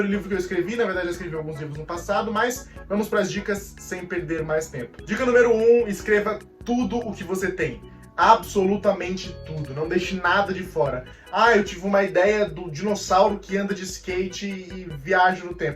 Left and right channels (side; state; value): both; identical; correlation 1.00